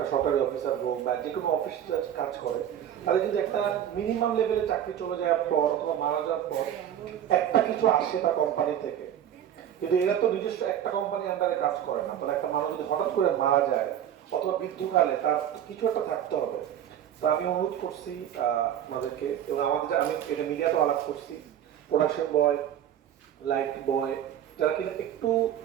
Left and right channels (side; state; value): left; quieter; 10.3 dB